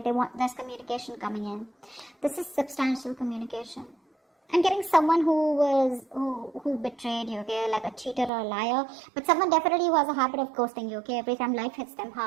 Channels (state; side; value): drops out; left; at 8.3 s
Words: There's communication coming in. This is substantial communication. I'm getting someone who betrayed you, okay, like a cheater or a liar, but someone definitely who has a habit of ghosting you, okay, every time life hits them